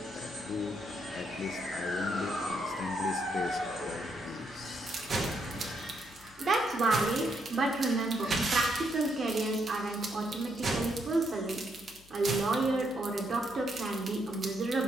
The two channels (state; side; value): noise; left; hum, 24 dB below the sound